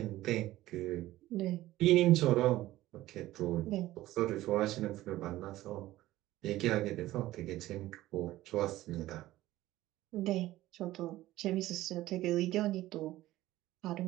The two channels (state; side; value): quieter; left; 16.0 dB